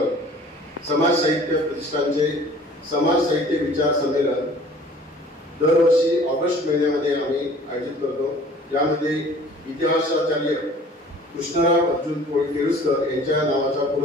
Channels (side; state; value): both; normal; correlation 0.50